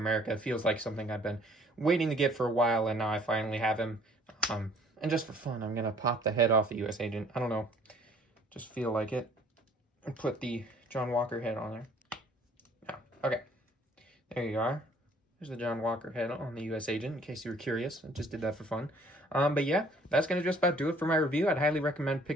It feels like something I've been waiting to get for a while, and now I finally have him. And just for fun, I'm going to pop the head off the U.S. Agent. I don't know, just feel like it. And put the John Walker head on there. Yeah, okay. There you are. There's the John Walker head on the U.S. Agent, in case you were curious. I just did that for fun. But yeah, that's going to just about do it for my review. I'd highly recommend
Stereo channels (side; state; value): both; normal; correlation 0.57